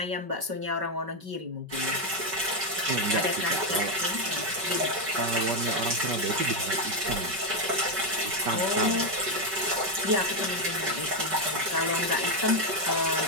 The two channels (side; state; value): left; late; 5.3 ms